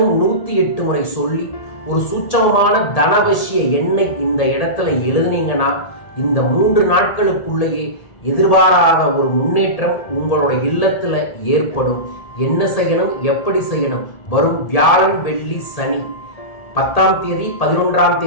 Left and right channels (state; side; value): late; right; 1.7 ms